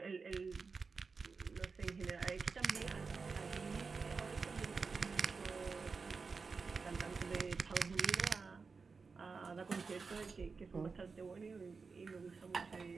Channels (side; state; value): left; quieter; 4.7 dB